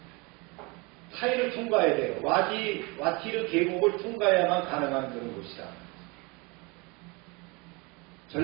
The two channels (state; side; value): quieter; left; 27.9 dB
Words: 타이를 통과해야 돼요. 와티르 계곡을 통과해야만 가능한 그런 곳이다.